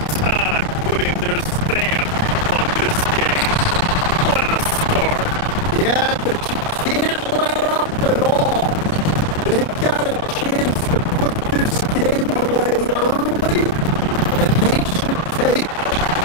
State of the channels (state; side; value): late; right; 29 ms